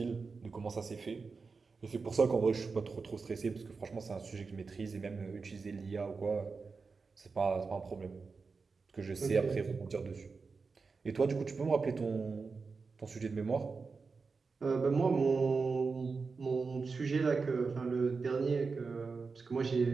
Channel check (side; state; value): left; quieter; 4.6 dB